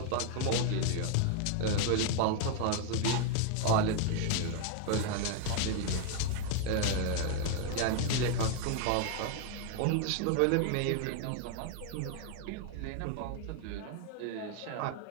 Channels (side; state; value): both; different; correlation 0.01